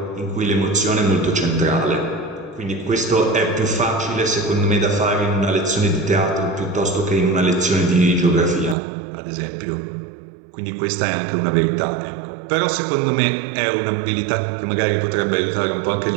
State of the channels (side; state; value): left; drops out; at 8.8 s